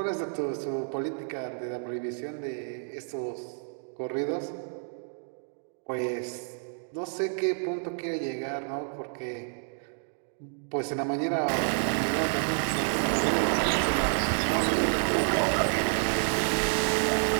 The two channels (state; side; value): silent; left; 58 dB below the other